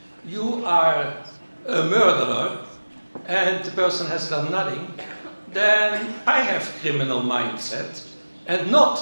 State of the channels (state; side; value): inverted; both; correlation -1.00